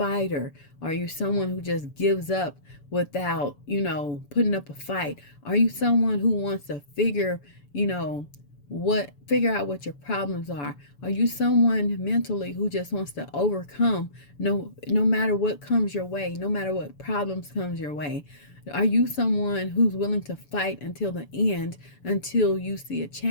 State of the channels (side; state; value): right; late; 7.0 ms